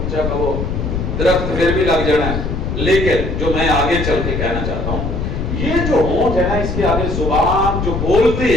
کہو درخت پھر بھی لگ جانا ہے۔ لیکن جو میں آگے چل کے کہنا چاہتا ہوں، یہ جو ہونٹ ہے نا، اس کے آگے زبان جو بولتی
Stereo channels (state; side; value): noise; left; rumble, 3 dB below the sound